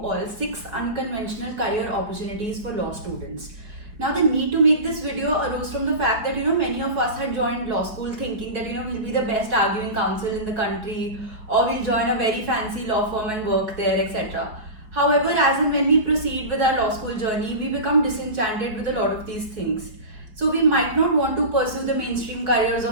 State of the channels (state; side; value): late; left; 4.5 ms